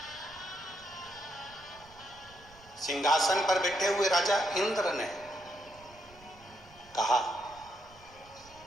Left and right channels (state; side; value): noise; right; rumble, 24 dB below the sound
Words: सिंहासन पर बैठे हुए राजा इंद्र ने कहा,